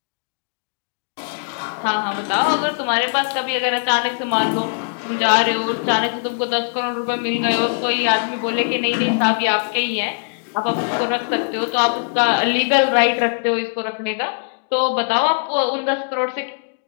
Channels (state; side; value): silent; right; digital silence